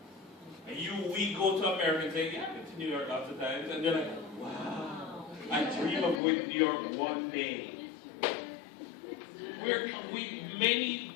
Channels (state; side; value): drops out; right; at 6.2 s